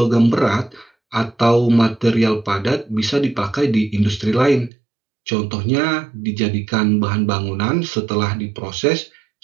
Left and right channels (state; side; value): drops out; left; at 4.7 s